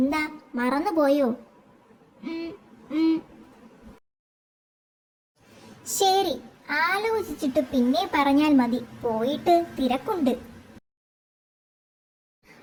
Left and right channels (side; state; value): both; identical; correlation 1.00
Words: മറന്നുപോയോ? ശരി, ആലോചിച്ചിട്ട് പിന്നെ പറഞ്ഞാൽ മതി. പോയിട്ട് തിരക്കുണ്ട്.